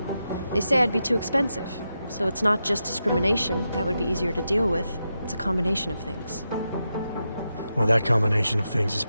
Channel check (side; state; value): both; inverted; correlation -0.88